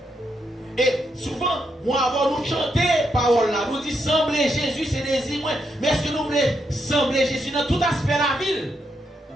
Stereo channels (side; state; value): both; normal; correlation 0.80